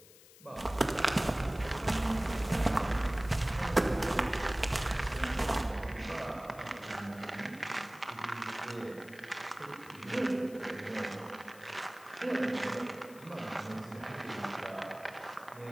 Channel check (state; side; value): noise; left; hiss, 21 dB below the sound